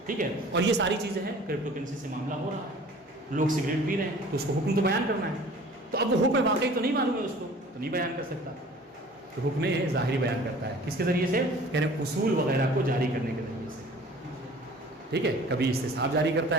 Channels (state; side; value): normal; both; correlation 0.47